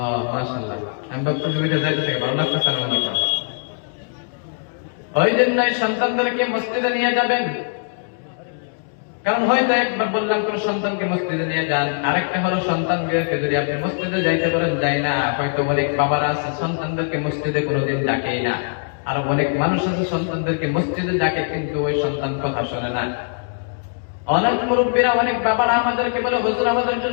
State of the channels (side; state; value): right; silent; 65 dB below the other